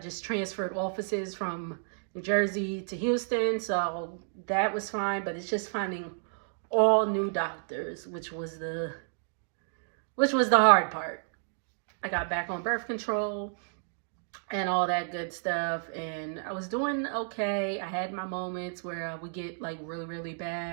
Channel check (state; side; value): silent; left; digital silence